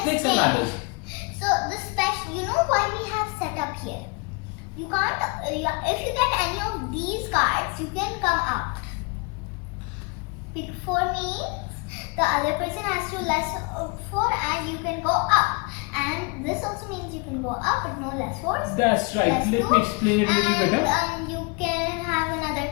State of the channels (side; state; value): right; quieter; 30.2 dB